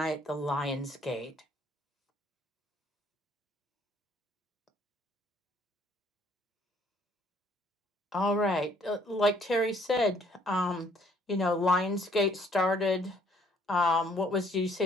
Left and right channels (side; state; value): both; normal; correlation 0.63